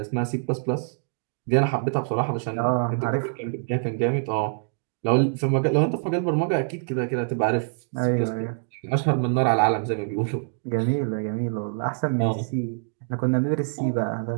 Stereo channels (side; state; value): left; silent; digital silence